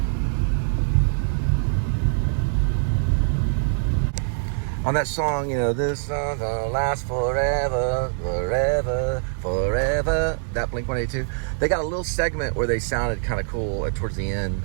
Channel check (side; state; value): left; silent; digital silence